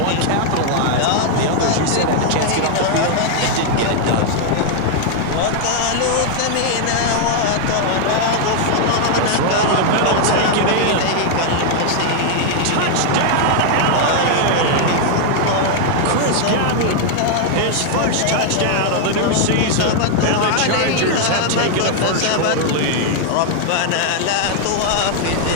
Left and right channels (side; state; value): both; different; correlation 0.00